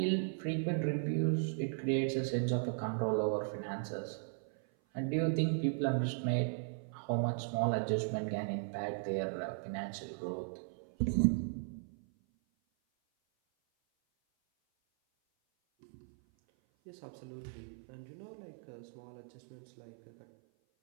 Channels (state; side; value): silent; left; 53 dB below the other